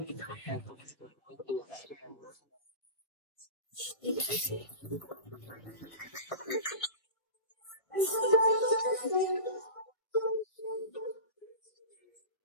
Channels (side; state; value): right; late; 1.5 ms